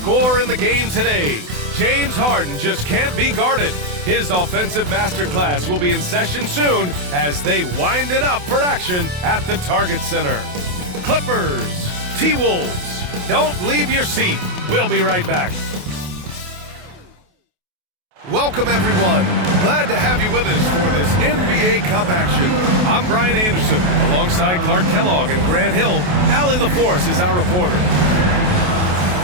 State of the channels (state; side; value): late; left; 28 ms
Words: in the game today. James Harden just can't be guarded. His offensive masterclass will be in session soon as they wind it up for action at the Target Center. Clippers, T-Wolves, don't leave your seat. We'll be right back. Welcome, everyone. Glad to have you with us for this NBA Cup action. I'm Brian Anderson, alongside Clark Kellogg and Grant Hill. Allie LaForce is our reporter.